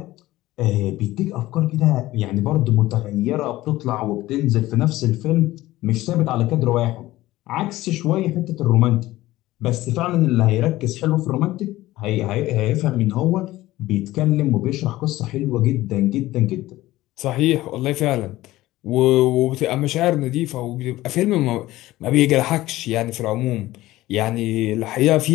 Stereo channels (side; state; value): right; quieter; 16.8 dB